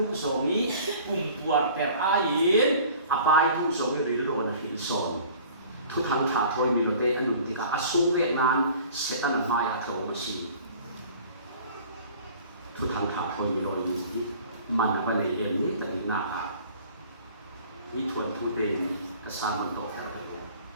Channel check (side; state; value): both; inverted; correlation -0.47